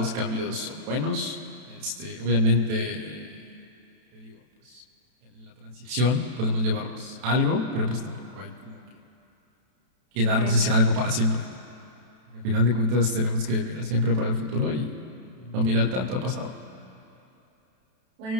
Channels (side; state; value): left; late; 32 ms